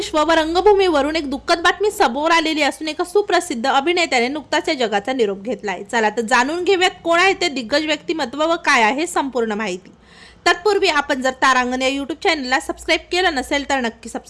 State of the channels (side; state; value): both; identical; correlation 1.00